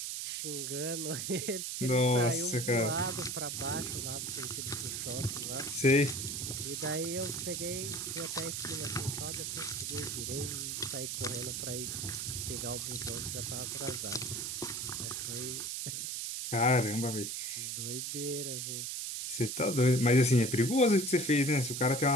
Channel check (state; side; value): noise; right; hiss, 3 dB below the sound